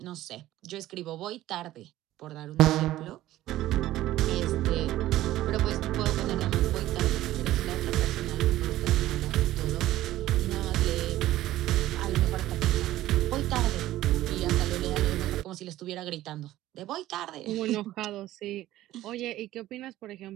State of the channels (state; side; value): quieter; left; 14.9 dB